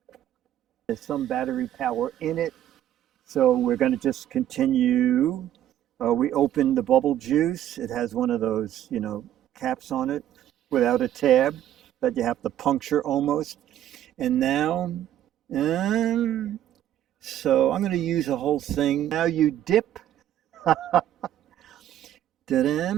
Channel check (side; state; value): left; quieter; 11.7 dB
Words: There's some battery power in it, so we're going to just continue. We opened the bubble juice. It has one of those, caps on it without a tab that you have to puncture almost. And now, so I'm going to use the whole thing. Now you dip.